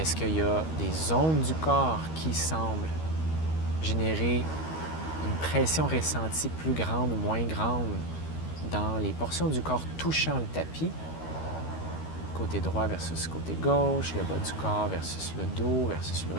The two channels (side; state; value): right; late; 13 ms